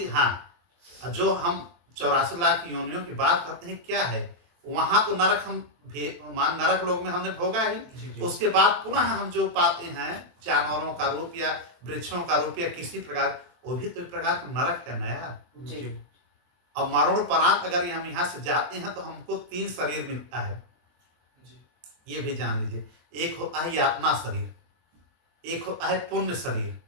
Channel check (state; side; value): late; left; 23 ms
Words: हाँ, जो हम 84 लाख योनियों की बात करते हैं, क्या है वहां तो नरक हम नरक लोक में हमने भोगा ही। जी उसके बाद पुनः हम जो पाते हैं जानवरों का रूप या वृक्षों का रूप या किसी प्रकार, वो भी तो एक प्रकार का नरक है नया। जी अब मरणोपरांत अगर हम यहाँ से जाते हैं तो हमको 3 शरीर मिलता है, ये भी जान लीजिए। एक होता है यातना शरीर, एक होता है पुण्य शरीर,